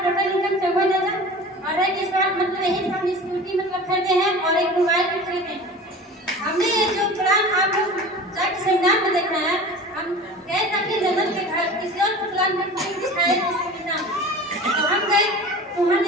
Total income 54,000। और एक इस बार मतलब यही हम स्कूटी मतलब खरीदे हैं और एक मोबाइल भी खरीदे हैं। हमने ये जो प्लान आप लोग जाके सेमिनार में देखा है, हम गए थे अपने नजर के घर किसी और को प्लान में दिखाए थे सेमिनार में। तो हम गए वहाँ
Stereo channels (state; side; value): normal; both; correlation 0.37